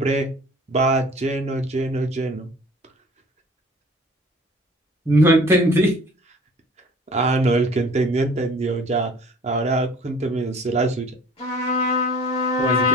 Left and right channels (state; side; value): normal; both; correlation 0.48